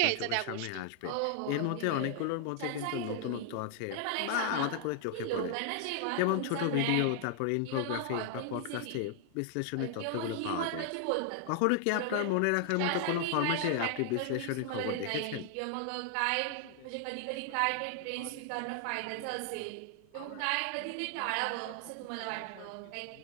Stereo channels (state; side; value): different; both; correlation 0.00